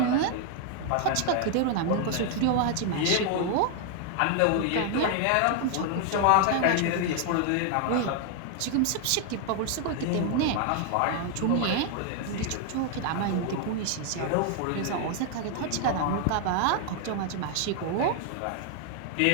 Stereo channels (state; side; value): different; both; correlation 0.00